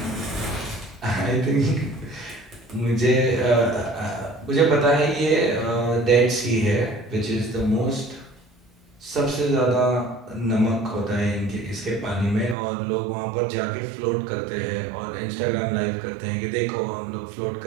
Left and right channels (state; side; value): drops out; left; at 12.6 s